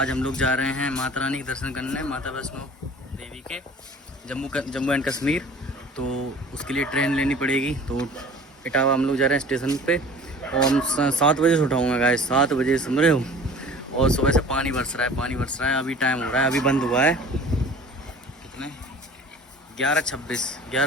हम लोग जा रहे हैं माता रानी के दर्शन करने, माता वैष्णो देवी के जम्मू एंड कश्मीर। तो उसके लिए ट्रेन लेनी पड़ेगी। तो इटावा हम लोग जा रहे हैं स्टेशन पे और हम 7 बजे से उठाऊँगा गाइस, 7 बजे समझ रहे हो। और सुबह से पानी बरस रहा है। अभी टाइम हो रहा है, अभी बंद हुआ है कितने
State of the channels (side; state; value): both; normal; correlation 0.44